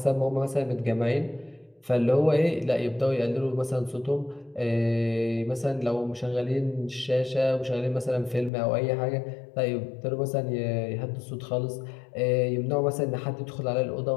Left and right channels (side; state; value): right; drops out; at 8.5 s